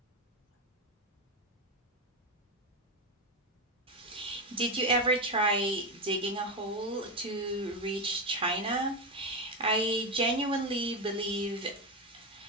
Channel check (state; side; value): normal; both; correlation 0.12